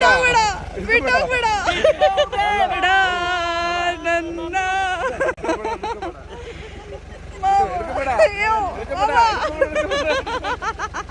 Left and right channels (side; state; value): both; identical; correlation 1.00